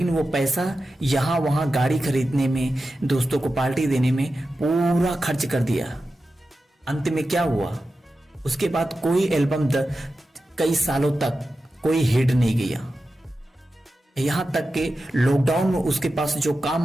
वो पैसा यहां वहां गाड़ी खरीदने में, दोस्तों को पार्टी देने में पूरा खर्च कर दिया। अंत में क्या हुआ? उसके बाद कोई एल्बम कई सालों तक कोई हिट नहीं गया। यहां तक कि लॉकडाउन में उसके पास जो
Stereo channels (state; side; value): normal; both; correlation 0.92